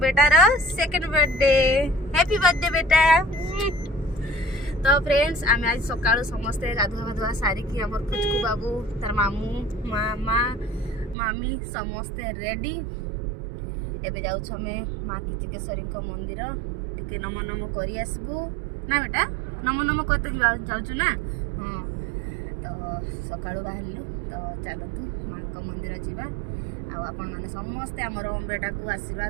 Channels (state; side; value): drops out; left; at 11.2 s